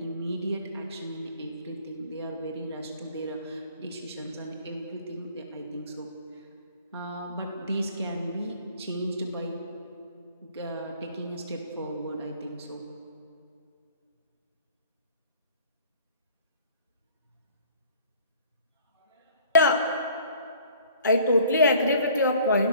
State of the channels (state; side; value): inverted; both; correlation -0.53